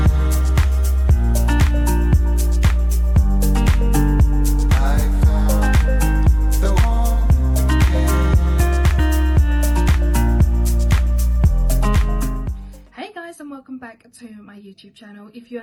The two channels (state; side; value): identical; both; correlation 1.00